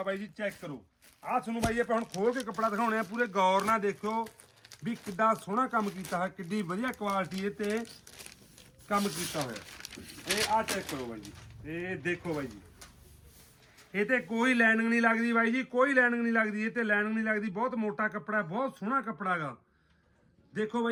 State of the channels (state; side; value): identical; both; correlation 1.00